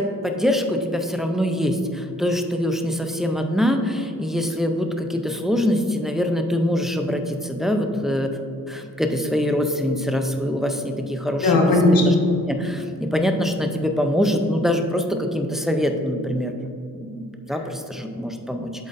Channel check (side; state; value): both; normal; correlation 0.64